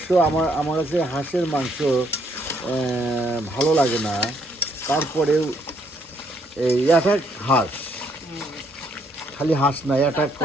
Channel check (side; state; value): both; normal; correlation 0.70